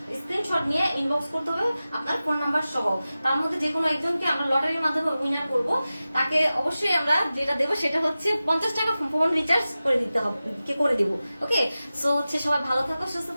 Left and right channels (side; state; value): both; inverted; correlation -0.95